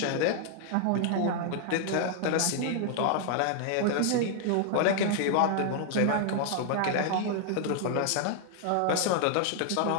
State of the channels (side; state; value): both; different; correlation 0.00